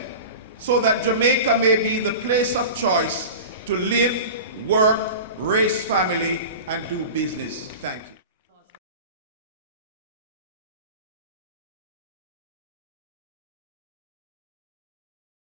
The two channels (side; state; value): both; inverted; correlation -0.33